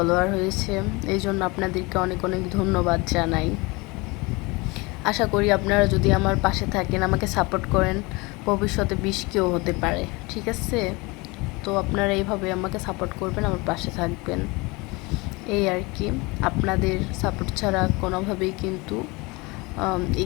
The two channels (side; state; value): right; quieter; 25.2 dB